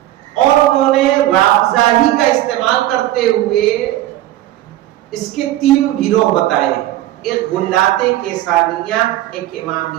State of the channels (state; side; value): quieter; left; 14.6 dB